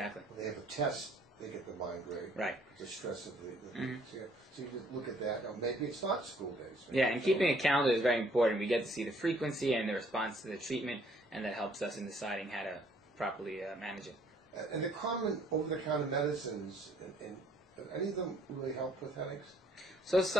When they have a test, they get the migraine. Right. The stress of the so you just look at that. Now, maybe it's not school days. Yeah, and keeping a calendar is very important. We get to see the frequency and the response to the treatment, and that helps us in deciding how to properly manage it. And the common over-the-counter medicines, and any of them really help with headaches? So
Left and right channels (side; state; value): both; normal; correlation 0.62